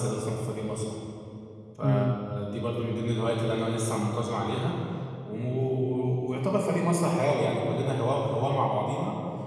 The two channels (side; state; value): both; identical; correlation 1.00